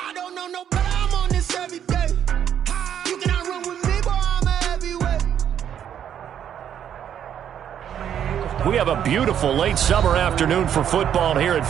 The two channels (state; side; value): quieter; left; 9.4 dB